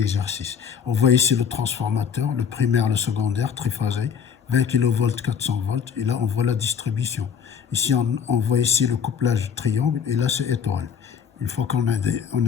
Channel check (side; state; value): right; quieter; 7.2 dB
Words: On voit ici le transformateur, le primaire, le secondaire, triphasé, 20 kV, 400 volts, et là, on voit la distribution. Ici, on voit ici le couplage triangle, et là, c'est étoile. Une fois qu'on